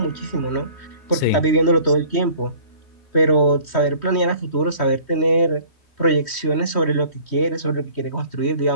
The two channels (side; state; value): right; late; 3.1 ms